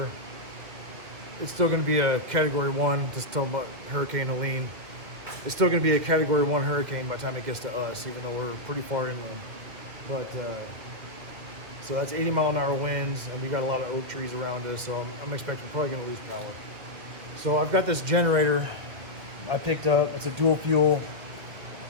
it's still going to be a Category 1, just talking about Hurricane Helene. It's still going to be a Category 1 hurricane by the time it gets to us, even though we're pretty far inland. But, so that's 80-mile-an-hour winds, and we got a lot of oak trees around us, so I'm expecting we're probably going to lose power. So I've got this generator I picked up. It's a dual fuel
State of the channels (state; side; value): late; left; 2.4 ms